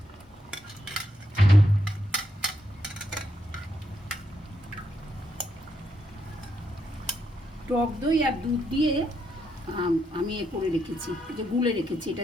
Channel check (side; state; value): both; normal; correlation 0.79